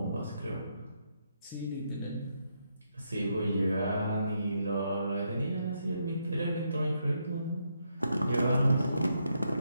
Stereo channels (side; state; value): both; inverted; correlation -0.79